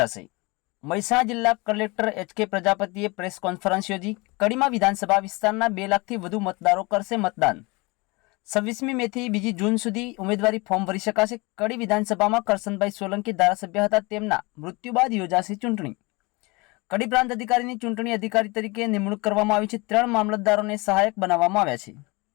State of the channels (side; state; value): right; quieter; 25.8 dB